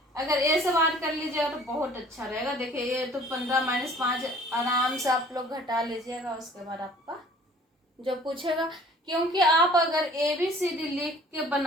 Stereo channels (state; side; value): normal; both; correlation 0.52